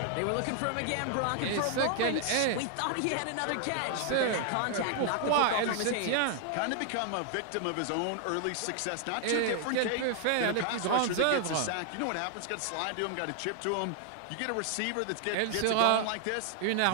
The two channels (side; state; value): both; different; correlation 0.00